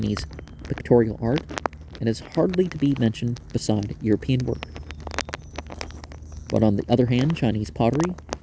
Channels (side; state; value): both; identical; correlation 1.00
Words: pictorial art and is hardly to be mentioned beside European work. But on the other hand, Chinese pottery